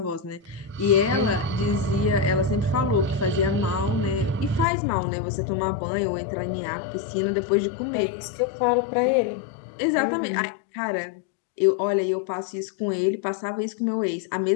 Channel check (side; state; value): right; drops out; at 4.7 s